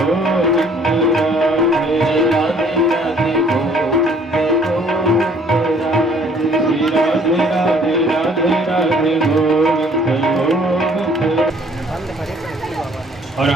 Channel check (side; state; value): both; normal; correlation 0.58